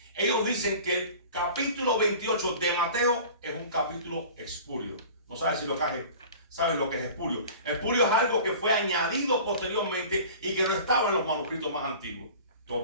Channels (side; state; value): both; inverted; correlation -0.41